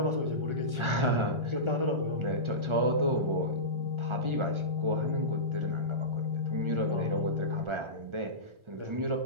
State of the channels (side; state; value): left; late; 1.4 ms